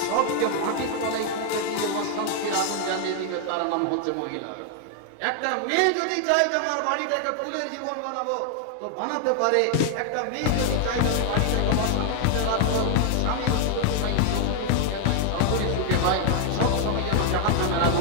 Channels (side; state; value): both; different; correlation 0.00